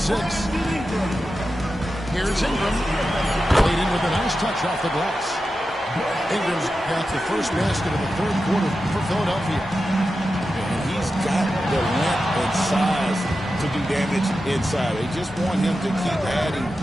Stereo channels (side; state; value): both; normal; correlation 0.91